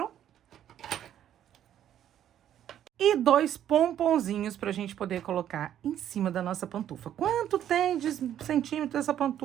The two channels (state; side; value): quieter; left; 10.7 dB